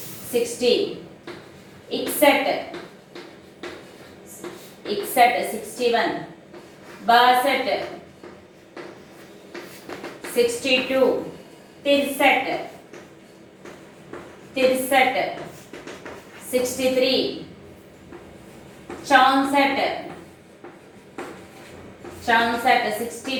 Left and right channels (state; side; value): identical; both; correlation 1.00